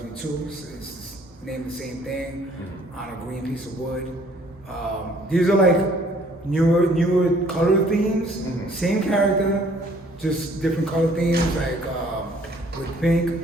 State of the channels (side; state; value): both; normal; correlation 0.59